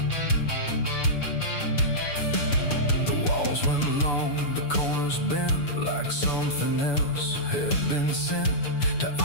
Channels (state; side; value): late; right; 6.9 ms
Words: The walls went long, the corners bent, like something else had been sent to